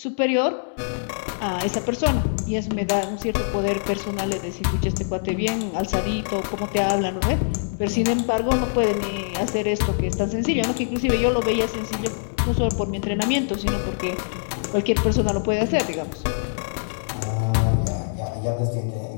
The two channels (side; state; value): right; silent; 63 dB below the other